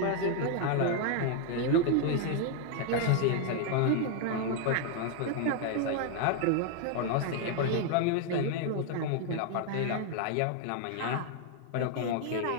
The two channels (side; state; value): both; different; correlation 0.00